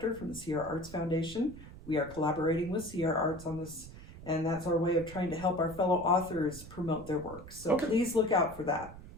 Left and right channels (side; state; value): right; noise; rumble, 15 dB below the sound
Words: from the Sierra Arts Foundation. We are collaborating with Sierra Arts on this, and that's our way of trying to help our fellow authors promote their work. So please look out for that.